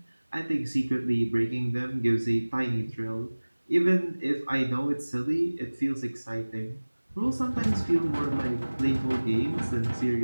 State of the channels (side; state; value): both; inverted; correlation -1.00